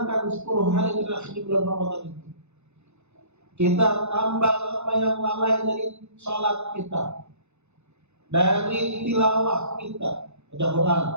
10 hari terakhir di bulan Ramadan itu, kita tambah apa yang lalai dari sholat kita, dari tilawah kita, baca Quran,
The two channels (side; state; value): left; late; 0.81 ms